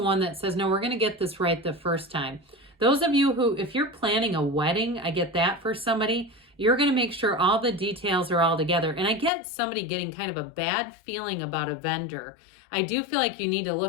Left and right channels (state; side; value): drops out; right; at 9.3 s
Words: one that says, no, we're going to get this right the first time. Those of you who, if you're planning a wedding, I get that for somebody, you're going to make sure all the details are all together. And I get somebody getting kind of a bad feeling about a vendor. I do feel like you need to